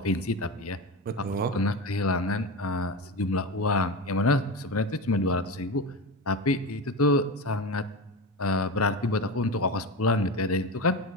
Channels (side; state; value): both; normal; correlation 0.21